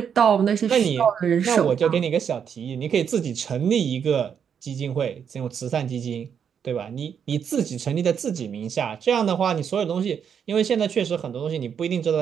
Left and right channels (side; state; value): left; quieter; 7.7 dB